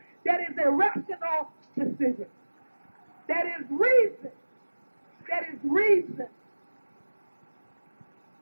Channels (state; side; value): inverted; both; correlation -1.00